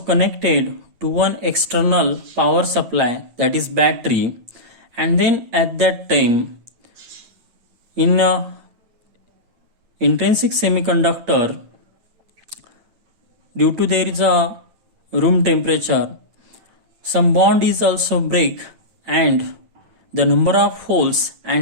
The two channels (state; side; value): late; left; 9.1 ms